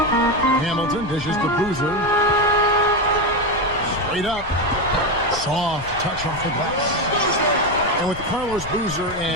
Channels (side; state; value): left; noise; rumble, 14 dB below the sound